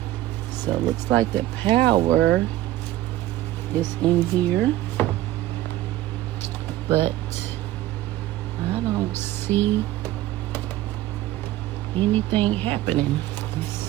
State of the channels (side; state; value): left; quieter; 15.2 dB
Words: So it looks like the power is in here, but I don't see anything happening. Let's